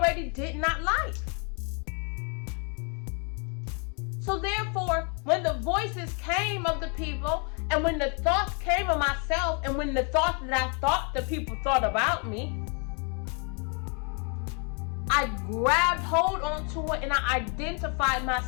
did not like. So therefore, when the voices came of the people, and when the thoughts came of myself, and when the thoughts that I thought the people thought about me, I grabbed hold onto it and I identified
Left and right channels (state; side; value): quieter; right; 37.7 dB